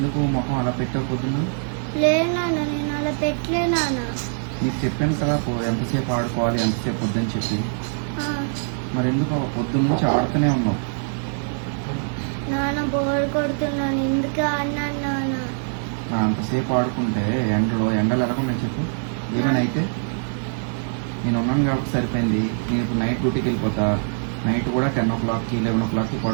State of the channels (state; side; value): silent; left; 56 dB below the other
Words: మొహం అలా పెట్టావు పొద్దున్న? లేదు నాన్న, నేను అలా పెట్టలే నాన్న. నీకు చెప్పాను కదా ఎంతసేపు ఆడుకోవాలి, ఎంతసేపు వద్దని చెప్పి. మరి ఎందుకు పొద్దున్న నుంచి ఆడుతూనే ఉన్నావు? నాన్న బోర్ కొడుతున్నాను, ఎందుకు అన్నాను నాన్న. అంతసేపు ఆడుకుంటే ఎండలు ఎలాగున్నాయి చెప్పు? ఏమైనా అయితే నేను ఉన్నాను కాబట్టి సరిపోయింది. నేను ఇప్పుడు నైట్ డ్యూటీకి వెళ్ళిపోతా. నైట్ కూడా 10 o'clockకి 11 o'clockకి